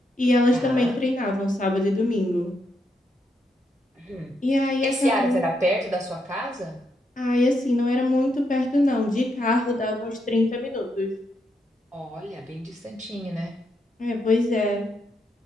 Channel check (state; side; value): normal; both; correlation 0.80